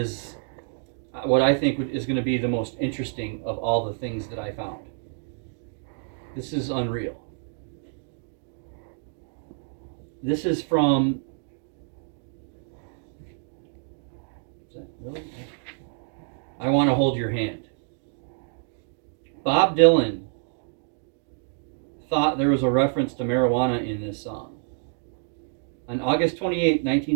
what I think is going to be the most interesting of all the things that I found. This is unreal. This is from... Is that really? I Want to Hold Your Hand. Bob Dylan thought there was a reference to marijuana in this song. On August 28,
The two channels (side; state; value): left; silent; 60 dB below the other